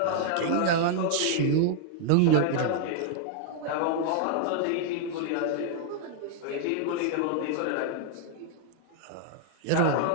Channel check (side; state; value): both; different; correlation 0.00